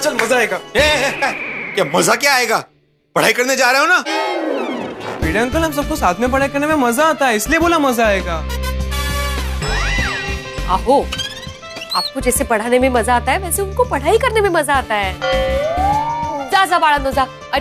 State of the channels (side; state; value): both; identical; correlation 1.00